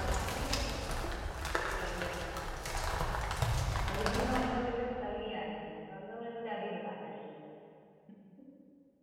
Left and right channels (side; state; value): both; identical; correlation 1.00